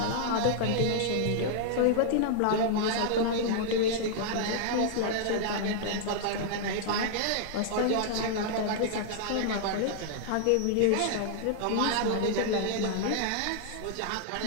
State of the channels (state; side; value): different; both; correlation -0.01